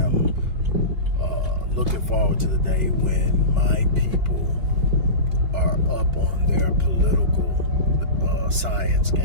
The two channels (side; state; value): left; late; 2.8 ms